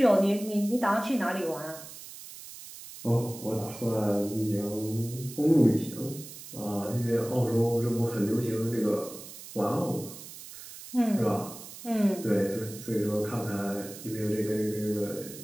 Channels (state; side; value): noise; right; hiss, 14 dB below the sound